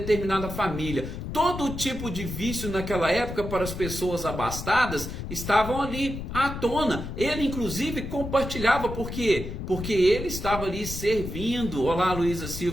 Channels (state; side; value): noise; left; rumble, 7 dB below the sound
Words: família. Todo tipo de vício naquela época para as pessoas abastadas estavam ali à tona. Ele inclusive compartilhava, por quê? Porque ele estava ali servindo. Olá, Luísa